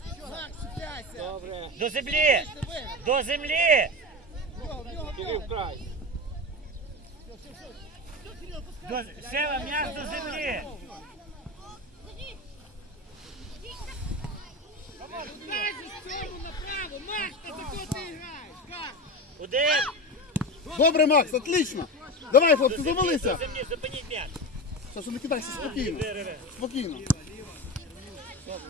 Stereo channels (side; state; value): both; normal; correlation 0.23